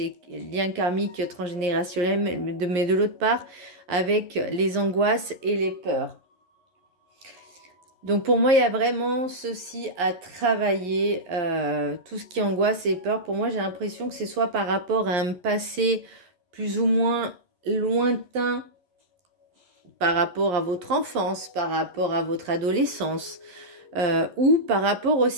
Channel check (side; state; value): left; late; 11 ms